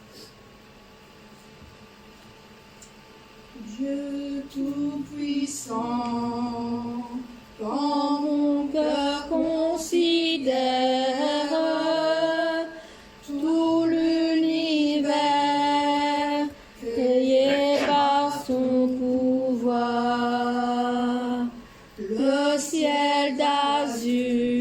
Dieu Tout-Puissant, Quand mon cœur considère tout l'univers créé par son pouvoir, le ciel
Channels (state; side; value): identical; both; correlation 1.00